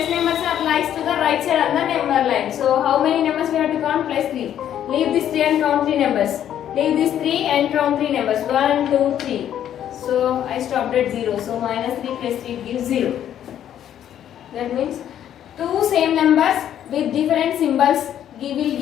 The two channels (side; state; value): right; quieter; 10.5 dB